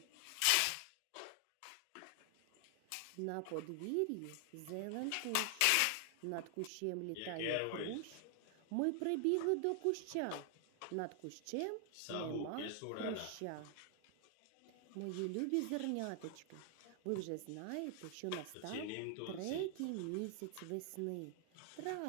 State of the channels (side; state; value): both; different; correlation 0.00